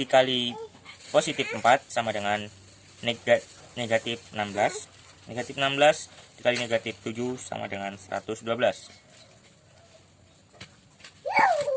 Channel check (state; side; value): identical; both; correlation 1.00